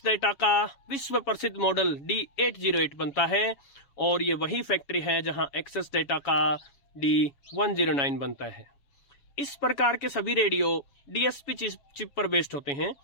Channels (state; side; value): late; right; 7.1 ms